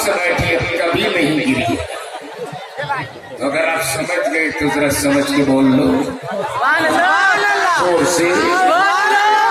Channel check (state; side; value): identical; both; correlation 1.00